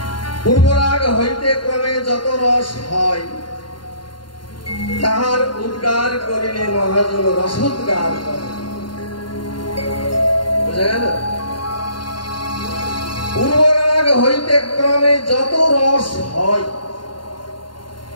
পূর্বরাগ হইতে ক্রমে যত রস হয় তাহার উদ্গার করিলে মহাজন রসোদ্গার করে। বুঝা গেল? পূর্বরাগ হইতে ক্রমে যত রস হয়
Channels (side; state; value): right; late; 0.72 ms